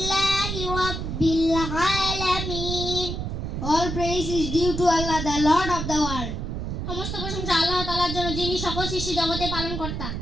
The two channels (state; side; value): noise; right; rumble, 4 dB below the sound